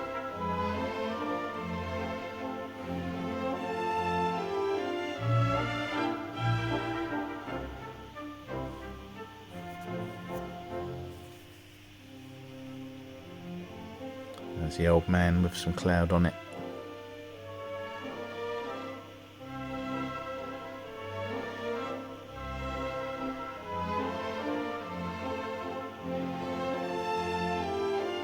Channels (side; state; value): both; identical; correlation 1.00